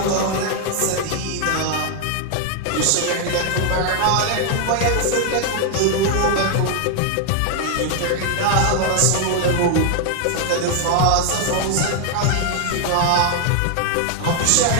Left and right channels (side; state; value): both; different; correlation 0.00